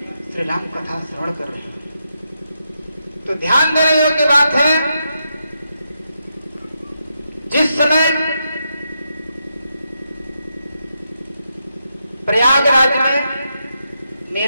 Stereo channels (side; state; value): both; inverted; correlation -0.83